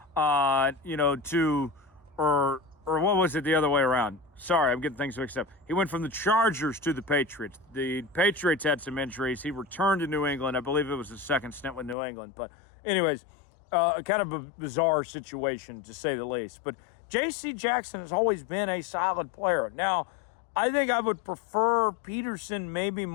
to, or what was it the other way around? Sorry, I'm getting things mixed up. He went from the Chargers to the Patriots. The Patriots had some injuries. He returned to New England. I believe it was his second stint with New England. But anyways, kind of a bizarre situation, to say the least. But J.C. Jackson has always been a solid player. Now, I think I would prefer Peterson maybe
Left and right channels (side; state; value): right; drops out; at 12.0 s